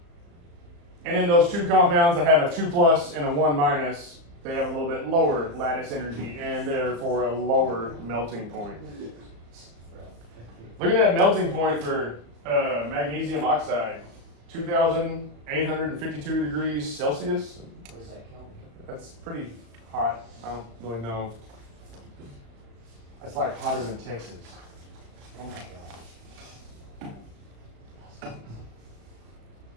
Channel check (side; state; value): left; late; 35 ms